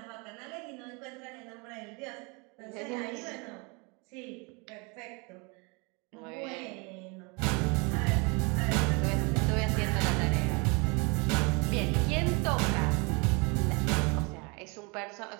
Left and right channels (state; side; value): quieter; left; 30.3 dB